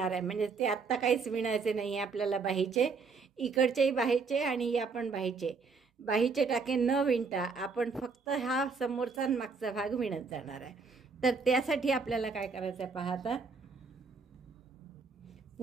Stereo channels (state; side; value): quieter; left; 4.8 dB